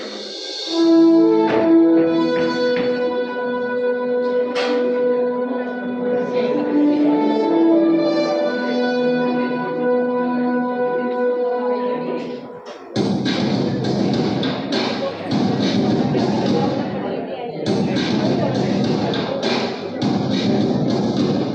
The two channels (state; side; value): identical; both; correlation 1.00